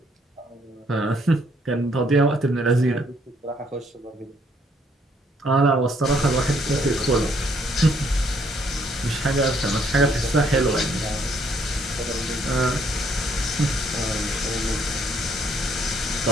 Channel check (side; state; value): both; normal; correlation 0.68